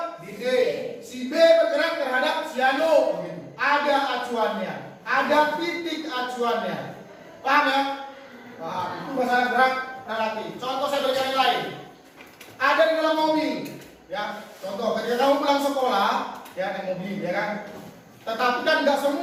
D, si B bergerak terhadap si Anu. Ada acuannya, ada titik acuannya. Paham ya? Nah, itu masalah gerak relatif. Contoh saya berikan yang lain. Ada di dalam mobil, ya. Contoh, ketika kamu pulang sekolah, ya naik mobil, ya kan. Tetapi kan nggak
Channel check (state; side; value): identical; both; correlation 1.00